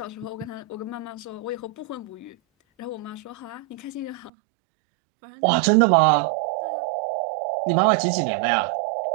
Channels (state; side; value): drops out; left; at 4.3 s